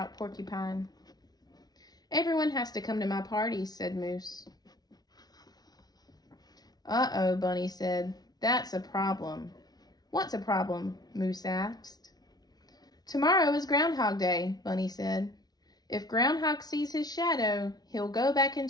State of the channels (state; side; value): late; right; 0.19 ms